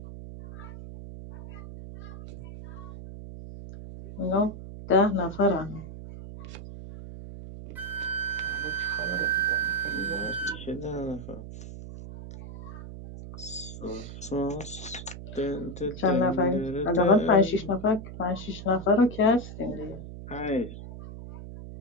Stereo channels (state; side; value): noise; right; hum, 11 dB below the sound